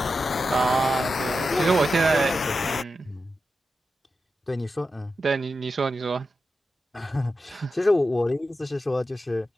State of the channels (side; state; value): both; normal; correlation 0.90